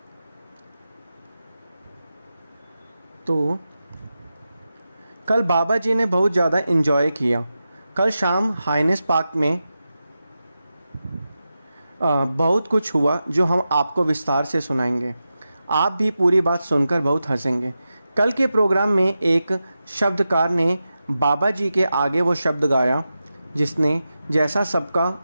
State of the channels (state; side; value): inverted; both; correlation -0.91